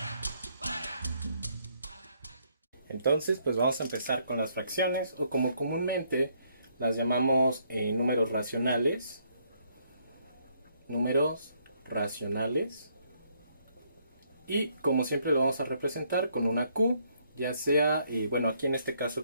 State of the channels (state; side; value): inverted; both; correlation -0.70